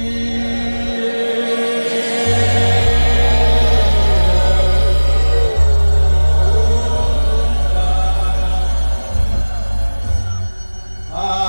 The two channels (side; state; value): both; inverted; correlation -1.00